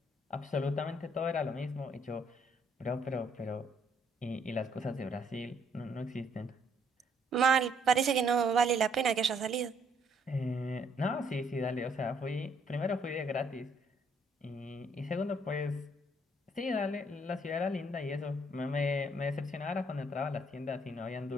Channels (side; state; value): both; normal; correlation 0.68